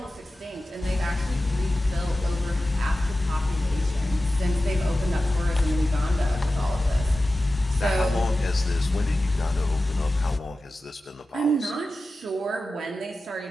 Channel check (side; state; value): both; normal; correlation 0.94